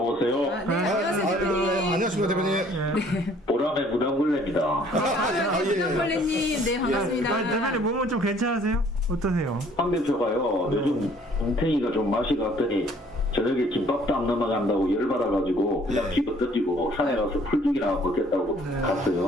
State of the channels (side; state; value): both; normal; correlation 0.58